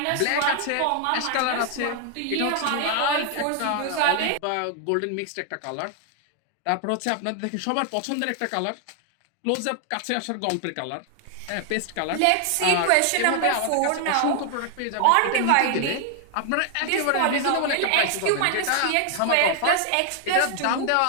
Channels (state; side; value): different; both; correlation 0.00